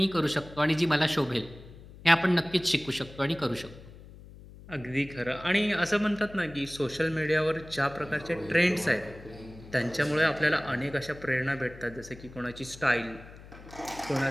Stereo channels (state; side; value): noise; left; hum, 18 dB below the sound